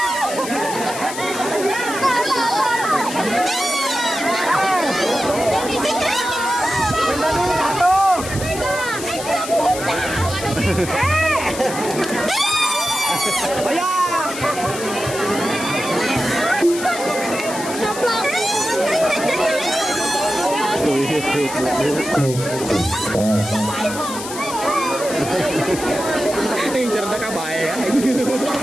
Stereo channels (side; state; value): left; noise; hiss, 10 dB below the sound